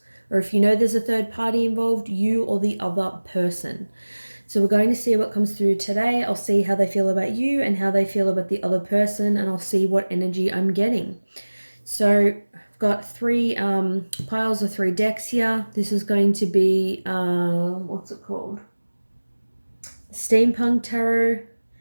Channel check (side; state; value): both; inverted; correlation -1.00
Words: Or if you know there's a third party involved, you or the other person. So we're going to see what comes through today. I'll see how they feel about you and how they feel about the other person, and I'll see what energy I'm getting. So I've got three piles of 3 decks here. This is going to be, what's it called? Steampunk Tarot,